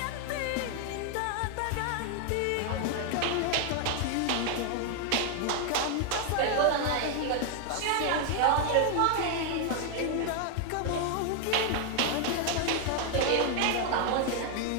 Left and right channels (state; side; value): different; both; correlation 0.00